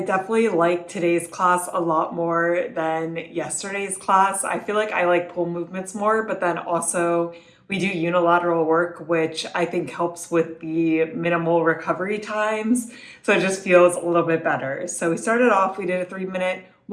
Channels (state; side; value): identical; both; correlation 1.00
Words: like today's class a lot more than yesterday's class. I feel like I like pull movements more, but then also we do unilateral work, which I think helps with the minimal recovery times. So it just feels a little bit better. So we started off, we did a 3-minute